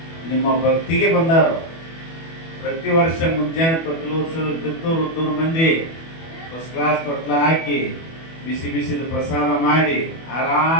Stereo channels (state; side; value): late; right; 24 ms